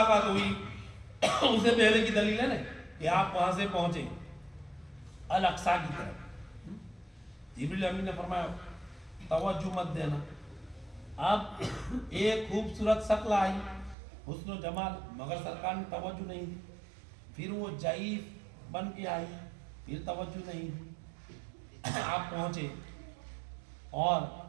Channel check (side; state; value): left; drops out; at 14.0 s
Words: ہوئی. اس سے پہلے کی دلیل ہے نا کہ آپ وہاں سے پہنچے الاقصی کی طرف. جبریل امین نے فرمایا توجہ مت دینا. اب ایک خوبصورت شکل آئی, حسن و جمال, مگر سرکار نے توجہ نہیں دی. پھر وہ ضعیف بن کے آئی, پھر توجہ نہیں دی. آپ پہنچے اور